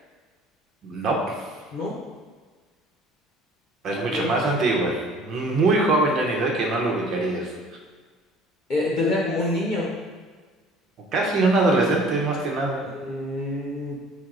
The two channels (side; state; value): both; normal; correlation 0.50